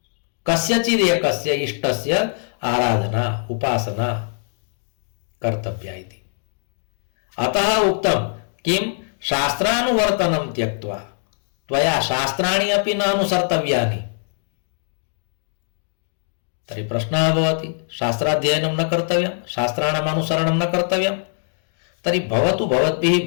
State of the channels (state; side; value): silent; right; digital silence